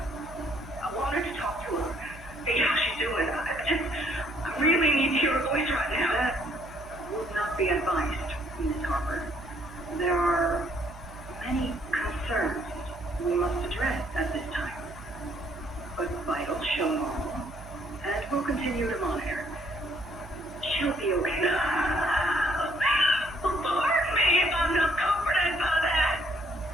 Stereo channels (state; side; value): noise; right; hum, 17 dB below the sound